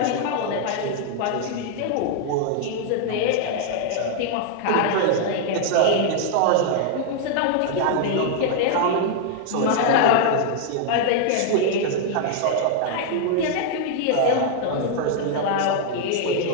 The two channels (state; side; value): different; both; correlation 0.00